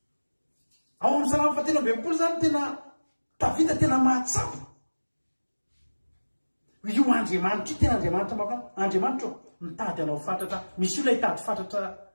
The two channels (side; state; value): both; inverted; correlation -1.00